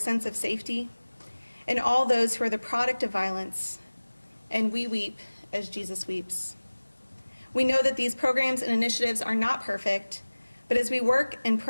of safety, and all those who are the product of violence. And we weep as Jesus weeps. We know that these programs and initiatives are not perfect, but as we work and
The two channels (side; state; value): both; inverted; correlation -1.00